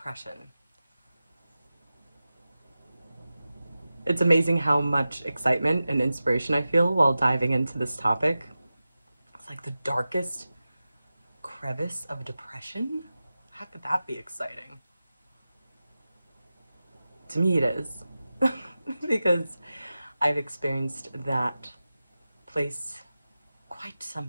It's amazing how much excitement and inspiration I feel while diving into this topic. It's like the darkest crevice of depression? How could that be exciting? To me, it is. Because I've experienced that place quite so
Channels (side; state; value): both; inverted; correlation -0.94